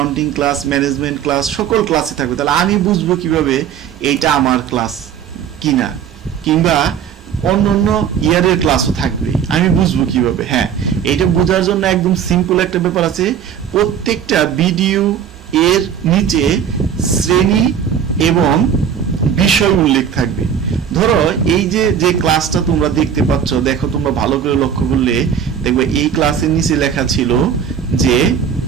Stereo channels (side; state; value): left; quieter; 8.0 dB